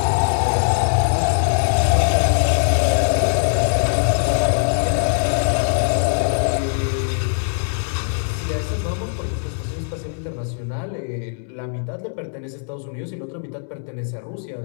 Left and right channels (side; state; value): right; silent; 65 dB below the other